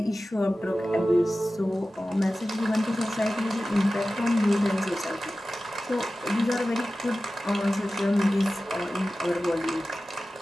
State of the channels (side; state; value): both; normal; correlation 0.95